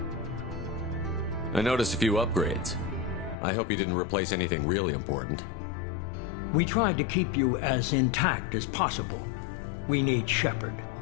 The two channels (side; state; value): right; drops out; at 3.4 s